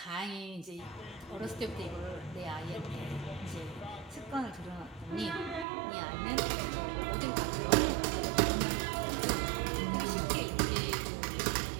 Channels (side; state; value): left; drops out; at 5.7 s